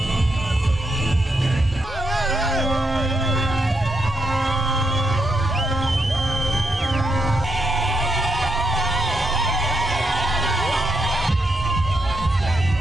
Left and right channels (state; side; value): normal; both; correlation 0.79